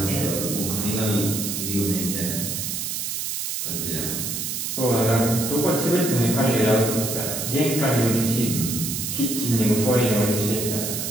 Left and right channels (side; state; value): right; noise; hiss, 3 dB below the sound